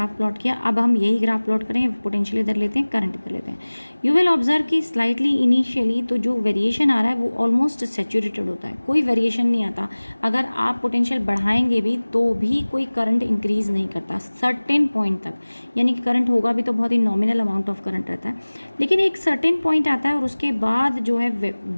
प्लॉट किया। अब हम यही ग्राफ प्लॉट करें, पोटेंशियल इधर लेते हैं, करंट इधर लेते हैं। यू विल ऑब्जर्व कि स्लाइटली इनिशियली तो जो वेरिएशन आ रहा है वो ऑलमोस्ट सैचुरेटेड होता है, कोई वेरिएशन नहीं आता। अगर आप पोटेंशियल बढ़ाएंगे भी तो भी कोई करंट इंक्रीज़ नहीं करता सर्टेन पॉइंट तक, यानी कि करंट होगा भी तो बहुत ही नॉमिनल अमाउंट ऑफ करंट रहता है। लेकिन एक सर्टेन पॉइंट आता है और उसके बाद जो है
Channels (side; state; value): both; inverted; correlation -1.00